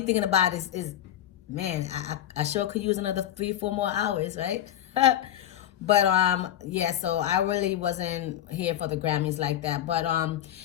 thinking about is man, I sure could use another 3-4 more hours, right? But yeah, so I really wasn't here for the Grammys like that. But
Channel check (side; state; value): right; quieter; 11.6 dB